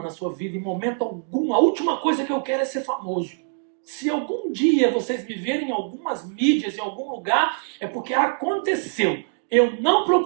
na sua vida em momento algum. A última coisa que eu quero é ser famoso. Se algum dia vocês me verem em algumas mídias, em algum lugar, é porque aconteceu. Eu não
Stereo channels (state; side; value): silent; left; digital silence